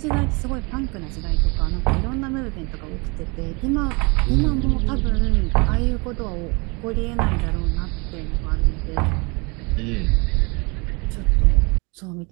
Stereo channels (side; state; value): left; quieter; 29.4 dB